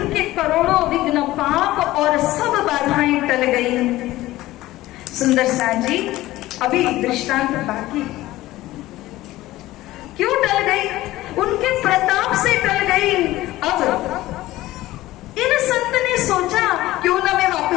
करोड़ों विघ्न पाप और सब बाधाएं टल गई। सुंदर साथ जी, अभी दृष्टांत बाकी। क्यों टल गई? उनके प्रताप से टल गई। अब इन संत ने सोचा क्यों ना मैं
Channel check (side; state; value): right; quieter; 16.7 dB